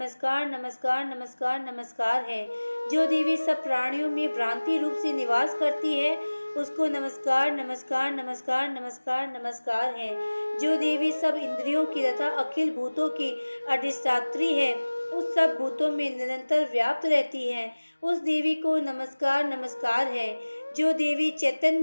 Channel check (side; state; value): both; inverted; correlation -1.00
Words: नमस्कार नमस्कार नमस्कार है। जो देवी सब प्राणियों में भ्रांति रूप से निवास करती है, उसको नमस्कार नमस्कार नमस्कार नमस्कार नमस्कार है। जो देवी सब इंद्रियों की तथा अखिल भूतों की अधिष्ठात्री है, उस सब भूतों में निरंतर व्याप्त रहती है, उस देवी को नमस्कार नमस्कार है। जो देवी